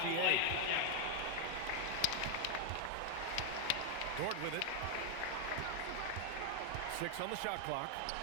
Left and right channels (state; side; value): different; both; correlation 0.00